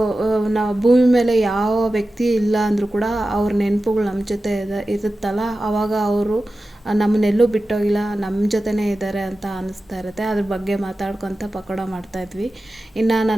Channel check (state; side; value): normal; both; correlation 0.94